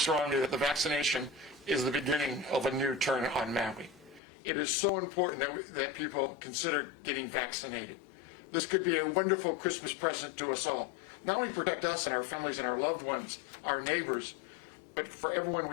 that the vaccination is the beginning of a new turn on Maui. It is so important that people consider getting vaccinated. This could be a wonderful Christmas present to us all. Not only protect us and our families and our loved ones, our neighbors, but for everyone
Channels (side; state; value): right; drops out; at 4.2 s